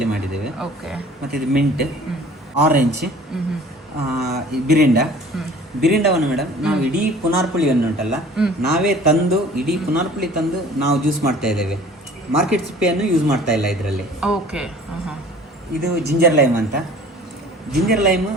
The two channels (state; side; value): normal; both; correlation 0.48